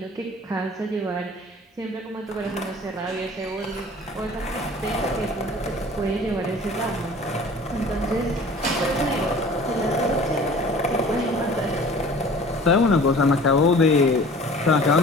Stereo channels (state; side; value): normal; both; correlation 0.46